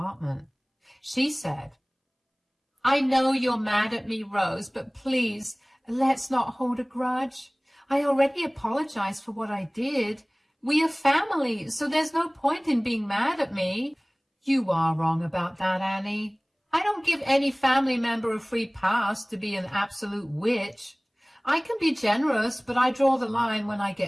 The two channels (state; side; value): identical; both; correlation 1.00